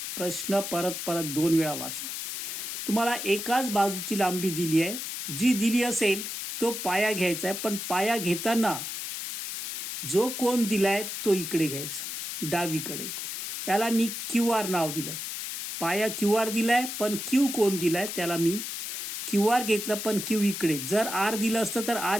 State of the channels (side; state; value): left; noise; hiss, 5 dB below the sound